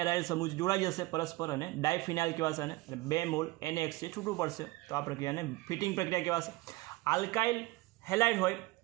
એરાઇલ સમૂહ જોડાઈ જશે પરસ્પર અને ડાયફિનાઇલ કહેવાશે અને 2 મોલ NaX છે છૂટું પડશે. તો આ પ્રક્રિયાને ફિટિંગ પ્રક્રિયા કહેવાશે. આલ્કાઇલ હેલાઇડ હોય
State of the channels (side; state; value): left; quieter; 20.9 dB